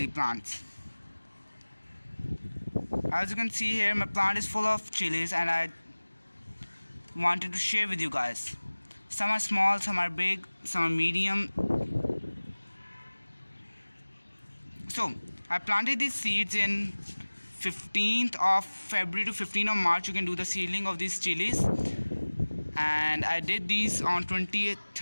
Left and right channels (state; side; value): inverted; both; correlation -1.00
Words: plants. As you can see here, my plant is full of chilies and I wanted to share with you guys. Some are small, some are big, some are medium. So I planted these seeds in 15th of February to 15th of March. You can do the seedling of these chilies. And I did these on